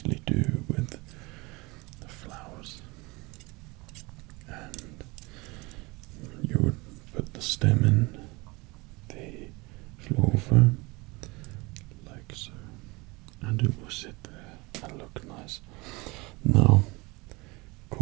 do with the flowers. And you would put the stem in the floral foam, like so, and it will sit there and look nice. Now,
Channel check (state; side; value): quieter; left; 24.8 dB